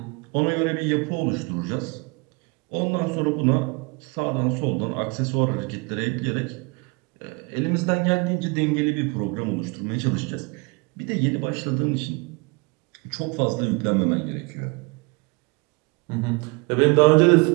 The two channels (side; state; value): left; quieter; 29.3 dB